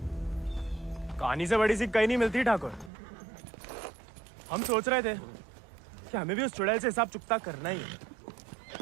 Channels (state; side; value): drops out; left; at 2.9 s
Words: कहानी से बड़ी सी कहीं नहीं मिलती ठाकुर। हम सोच रहे थे कि हमें भी उस चुड़ैल से हिसाब चुकता करना ही है।